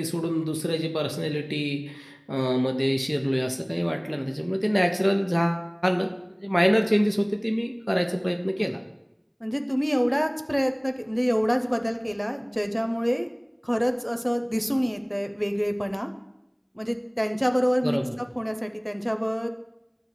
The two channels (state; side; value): identical; both; correlation 1.00